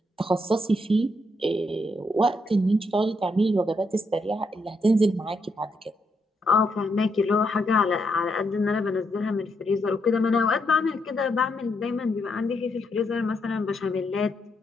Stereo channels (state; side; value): normal; both; correlation 0.78